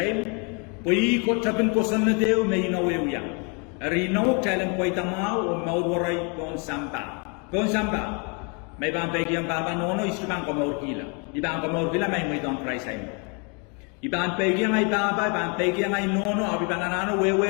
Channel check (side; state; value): right; quieter; 34.9 dB